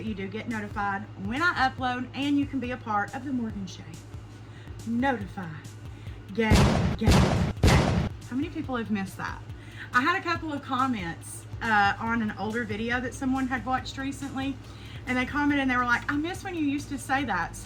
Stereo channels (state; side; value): identical; both; correlation 1.00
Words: you do get notified when I upload, and you can be a part of the Morgan Shay Notify Gang. How many people have missed that? I had a couple of comments on an older video that someone had watched recently, and they commented and they were like, I miss when you used to say that.